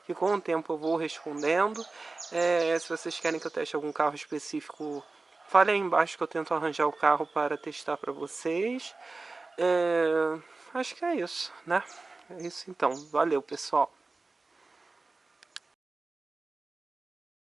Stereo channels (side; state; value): left; quieter; 3.6 dB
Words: que com o tempo eu vou respondendo. Se vocês querem que eu teste algum carro específico, fale aí embaixo que eu tento arranjar o carro para testar para vocês. Acho que é isso, né? É isso então. Valeu, pessoal.